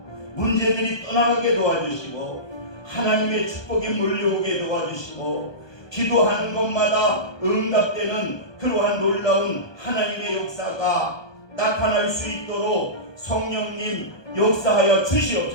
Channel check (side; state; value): right; late; 1.2 ms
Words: 문제들이 떠나가게 도와주시고 하나님의 축복이 몰려오게 도와주시고 기도하는 것마다 응답되는 그러한 놀라운 하나님의 역사가 나타날 수 있도록 성령님 역사하여